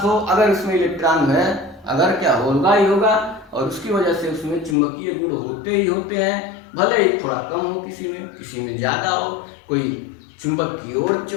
हो, अगर उसमें इलेक्ट्रॉन है, अगर क्या होगा ही होगा, और उसकी वजह से उसमें चुंबकीय गुण होते ही होते हैं। भले ही थोड़ा कम हो किसी में ज्यादा हो, कोई चुंबक की ओर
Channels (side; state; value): right; drops out; at 4.8 s